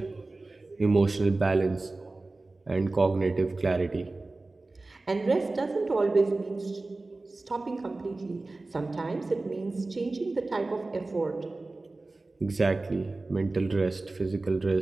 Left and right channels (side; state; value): left; quieter; 3.2 dB